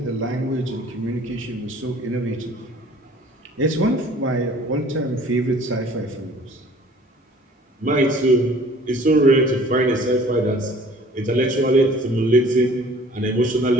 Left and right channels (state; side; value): normal; both; correlation 0.51